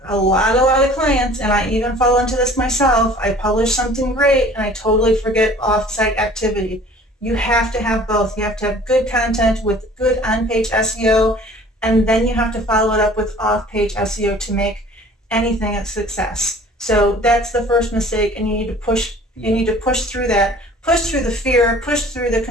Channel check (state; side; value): normal; both; correlation 0.49